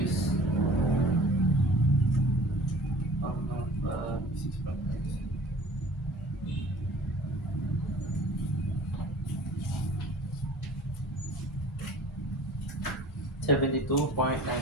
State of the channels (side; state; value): both; normal; correlation 0.46